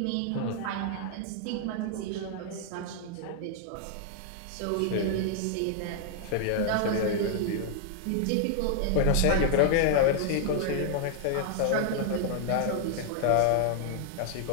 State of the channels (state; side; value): different; both; correlation 0.00